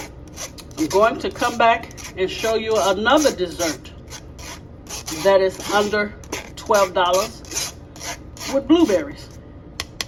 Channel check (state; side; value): identical; both; correlation 1.00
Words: I'm going to come back and show you another dessert that is under $12 with blueberries.